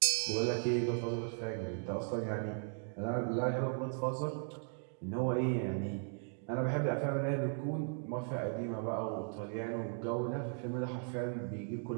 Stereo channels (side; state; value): left; silent; 53 dB below the other